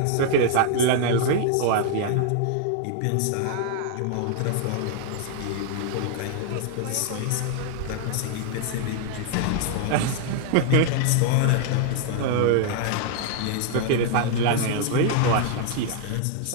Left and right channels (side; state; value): both; different; correlation 0.00